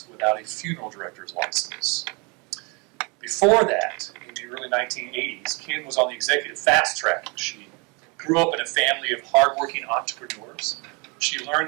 without a funeral director's license. Before that, in the early 1980s, Kim was on the executive fast track. She grew up in a family of hardworking entrepreneurs. She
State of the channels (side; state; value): left; quieter; 30.7 dB